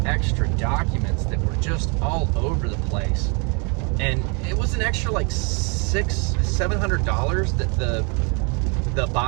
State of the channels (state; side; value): quieter; left; 34.4 dB